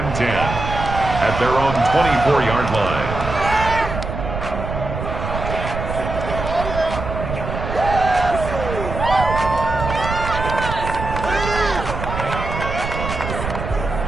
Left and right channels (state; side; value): noise; right; rumble, 6 dB below the sound